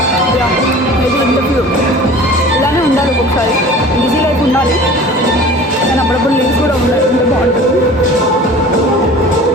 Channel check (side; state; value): both; normal; correlation 0.42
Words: మేబీ ఇంటర్వ్యూ ఇలానే ఉండాలి, ఒక్కొక్కసారి బిజీ లైఫ్ ఉండాలి కానీ అప్పుడప్పుడు లీవ్స్ కూడా ఉండాలి, ఇంత బాగుంటుంది.